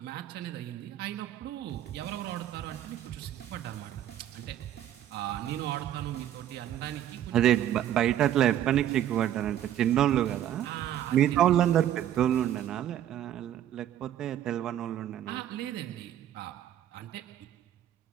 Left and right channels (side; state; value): left; quieter; 11.4 dB